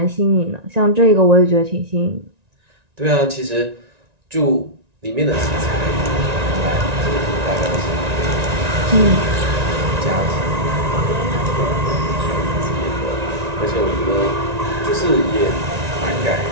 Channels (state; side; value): late; left; 1.9 ms